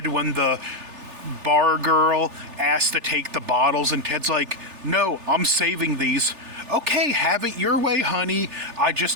when the bar girl asks to take the bottles and Ted's like, "No, I'm saving these." "Okay, have it your way, honey. I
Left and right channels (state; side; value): late; left; 3.4 ms